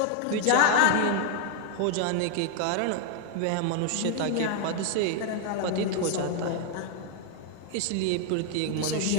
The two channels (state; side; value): different; both; correlation 0.00